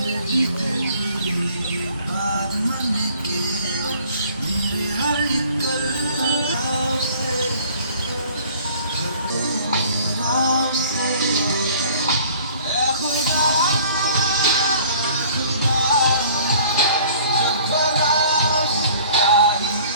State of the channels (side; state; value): both; inverted; correlation -0.52